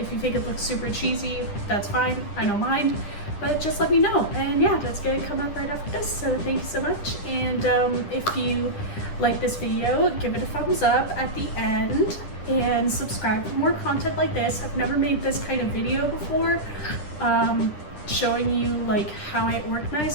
you think it looks super cheesy, that's fine. I don't mind. But just let me know. And yeah, that's gonna come up right after this. So thank you so much. And if you like this video, give it a thumbs up at the end and subscribe for more content like this. I've never made this kind of video before, showing you like how I organize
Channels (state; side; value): late; right; 10 ms